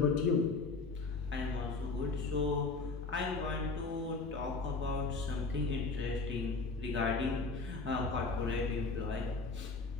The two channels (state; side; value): quieter; right; 4.0 dB